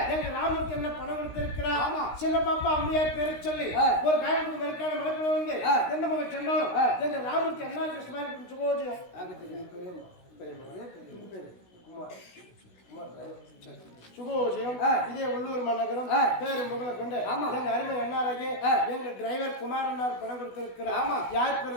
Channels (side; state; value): right; late; 16 ms